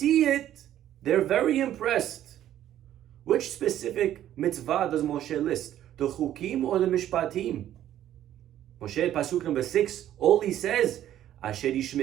it, they're very impressed. Which specific mitzvah does Moshe list? The chukim or the mishpatim? Moshe, pasuk number 6, all he says, Asher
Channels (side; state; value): left; quieter; 11.9 dB